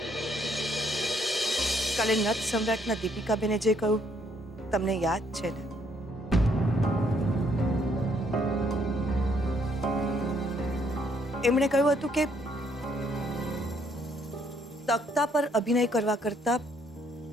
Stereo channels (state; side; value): normal; both; correlation 0.69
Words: કાલે નત સમ્રાટના દીપિકાબેને જે કહ્યું તમને યાદ છે ને? એમણે કહ્યું હતું કે તખ્તા પર અભિનય કરવા કરતા